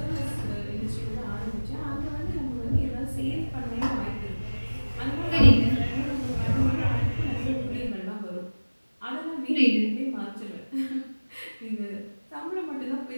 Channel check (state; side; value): inverted; both; correlation -1.00